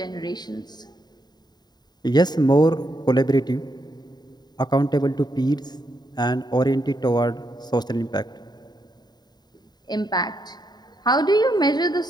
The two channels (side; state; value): right; late; 0.20 ms